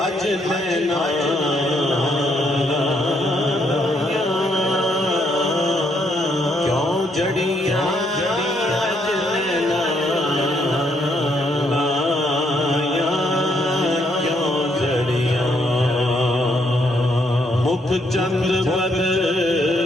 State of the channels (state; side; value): normal; both; correlation 0.73